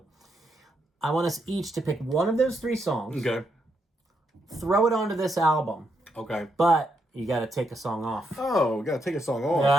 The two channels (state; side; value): normal; both; correlation 0.79